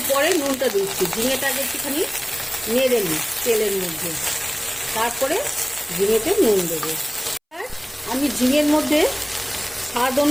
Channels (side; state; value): both; identical; correlation 1.00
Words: পরে নুনটা দিচ্ছি। ঝিঙেটা আগে একটুখানি নেড়ে নিই তেলের মধ্যে, তারপরে ঝিঙেতে নুন দেবো। আমি ঝিঙের মধ্যে স্বাদ